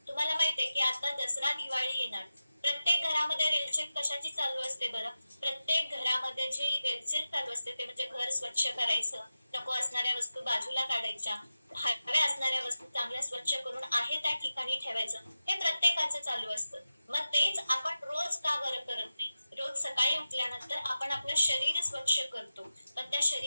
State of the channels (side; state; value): both; inverted; correlation -0.92